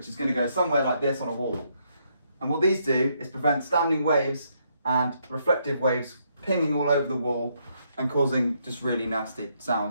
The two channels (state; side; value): inverted; both; correlation -0.74